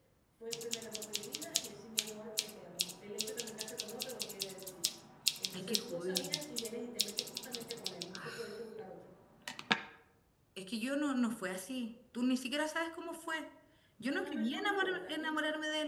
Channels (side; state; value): both; identical; correlation 1.00